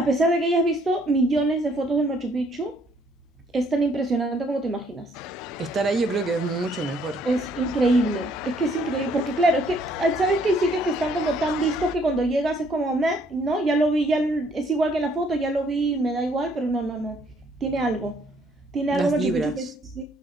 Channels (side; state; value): both; normal; correlation 0.65